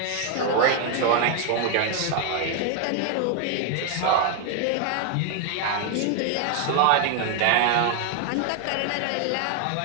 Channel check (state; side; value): different; both; correlation 0.01